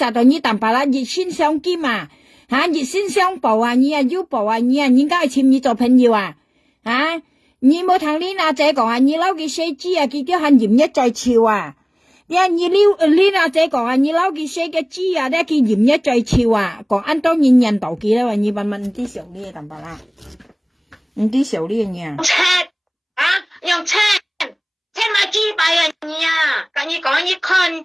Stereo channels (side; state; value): both; identical; correlation 1.00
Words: 在你淡白啦，熱先相兼熱先相報你要報你應該簽你做朋友你冇同你阿姐講你撈嘅死豬佢叫喊鹽一再潮你阿姐講你撈佢寫嘅豬佢鹽一再潮講按當然人道記啦你問啲小呢咁白啦啲小呢嘢用車買豬擺你跟你講你